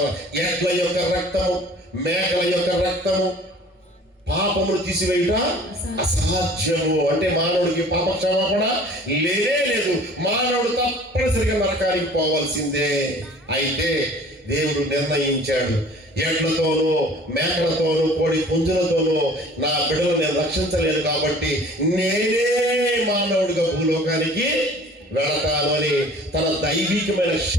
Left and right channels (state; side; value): normal; both; correlation 0.48